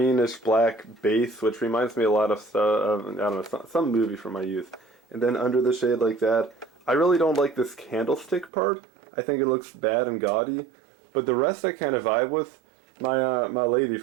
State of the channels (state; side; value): drops out; left; at 8.5 s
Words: black base, which reminds me a lot of I don't know, some movie from my youth. And then under the shade like that. I really don't like this candlestick part. I think it looks bad and gaudy. But the rest I kind of vibe with. My lady